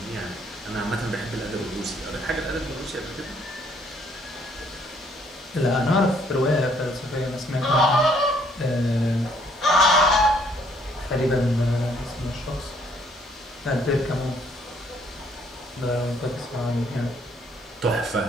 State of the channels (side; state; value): both; normal; correlation 0.65